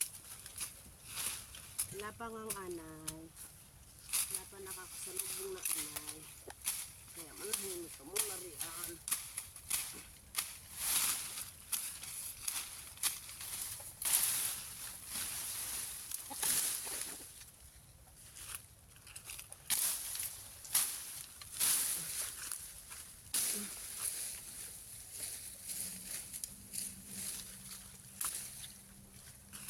Wala pa ngang anay. Wala pa nakakasalubong na anay. Kaya manahimik ka muna riyan.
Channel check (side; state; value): both; identical; correlation 1.00